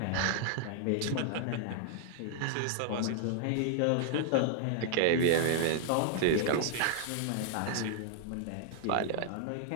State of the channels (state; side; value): different; both; correlation -0.01